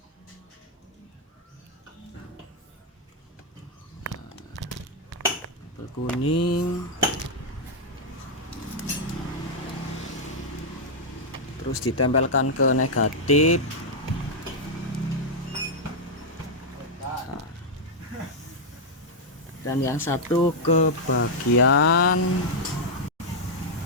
Kabel kuning. terus ditempelkan ke negatif. Nah, dan yang satu ke bagian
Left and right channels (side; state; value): both; normal; correlation -0.03